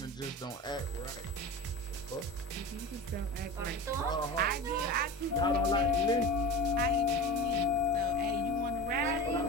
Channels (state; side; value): normal; both; correlation 0.31